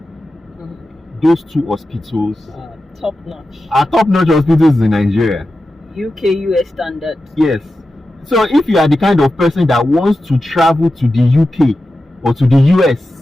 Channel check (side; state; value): both; normal; correlation 0.92